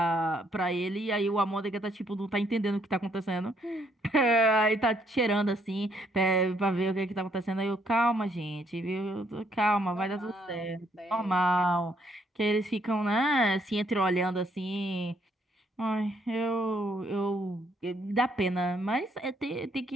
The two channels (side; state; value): both; normal; correlation 0.70